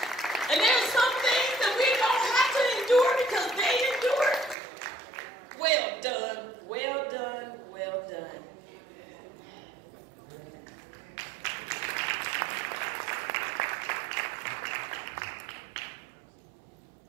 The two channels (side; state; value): left; drops out; at 4.5 s